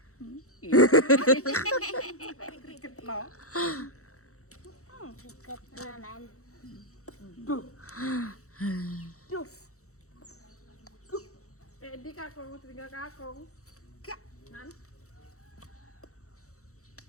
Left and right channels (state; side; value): late; right; 0.64 ms